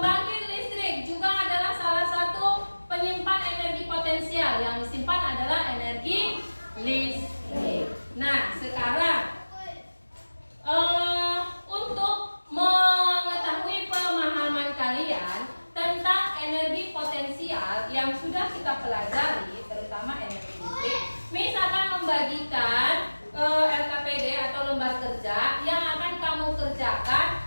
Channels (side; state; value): both; inverted; correlation -1.00